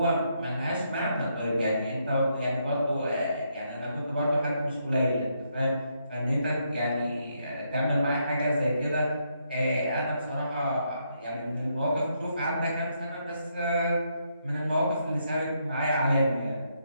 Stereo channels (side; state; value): both; inverted; correlation -0.77